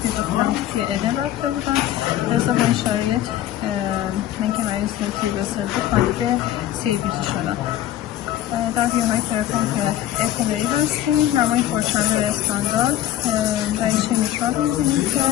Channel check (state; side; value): quieter; right; 12.7 dB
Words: خونریزی علم رفته بودن. لذا به این شرایط من که مریض تیروسل بود کاندید CABG شدن. در بیاهای ترپان اعتماری هستیم، نمای پرچند استاندارد دریچه میترال میزنیم که